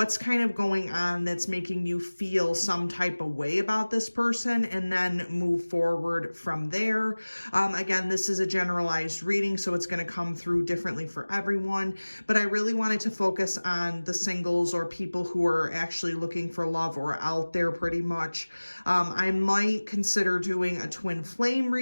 kind of going on that's making you feel some type of way about this person, and then move forward from there. Again, this is a generalized reading, so it's going to come through differently for everyone, but I really wanted to focus on the singles or people who are actually looking for love or out there pretty much. I might consider doing a twin flame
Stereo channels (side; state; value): both; inverted; correlation -1.00